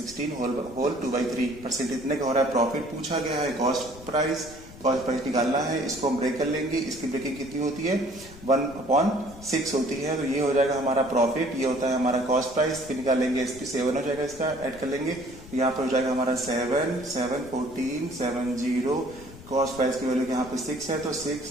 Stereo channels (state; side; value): noise; left; rumble, 18 dB below the sound